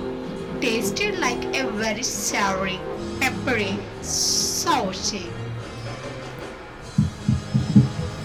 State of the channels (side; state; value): both; identical; correlation 1.00